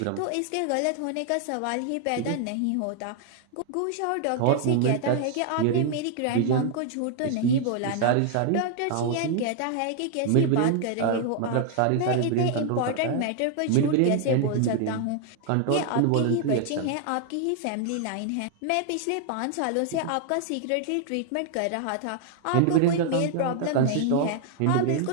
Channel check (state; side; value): different; both; correlation 0.00